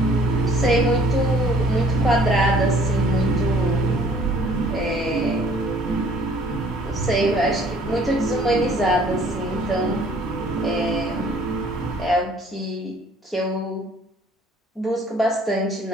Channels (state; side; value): normal; both; correlation 0.56